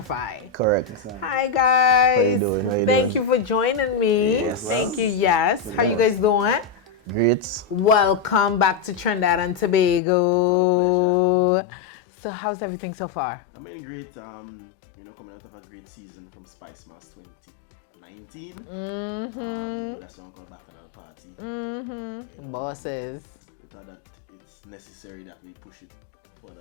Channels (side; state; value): right; drops out; at 10.0 s